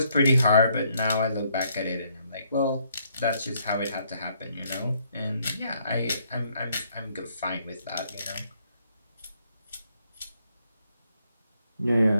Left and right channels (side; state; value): both; inverted; correlation -0.70